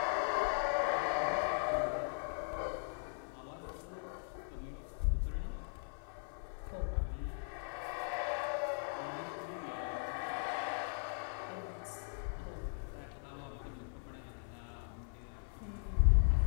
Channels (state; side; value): silent; right; 52 dB below the other